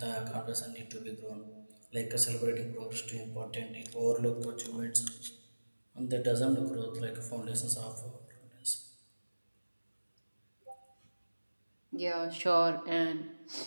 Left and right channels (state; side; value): inverted; both; correlation -1.00